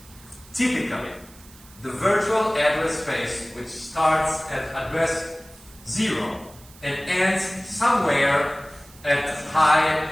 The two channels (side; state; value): right; noise; hiss, 23 dB below the sound